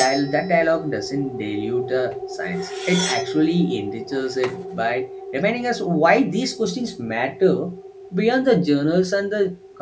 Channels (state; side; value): identical; both; correlation 1.00